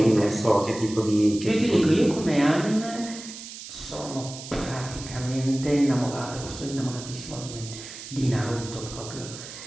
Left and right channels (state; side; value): noise; right; hiss, 12 dB below the sound